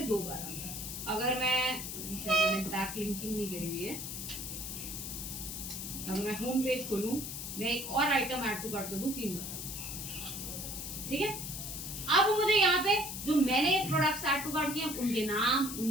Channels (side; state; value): left; noise; hiss, 6 dB below the sound